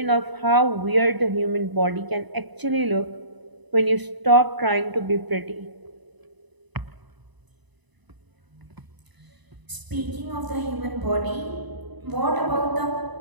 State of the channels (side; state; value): left; late; 1.0 ms